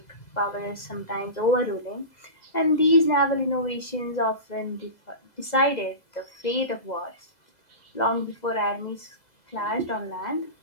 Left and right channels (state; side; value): late; right; 2.0 ms